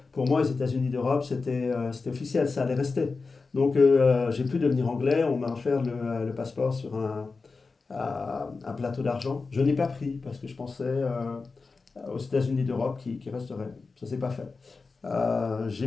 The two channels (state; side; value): quieter; right; 4.2 dB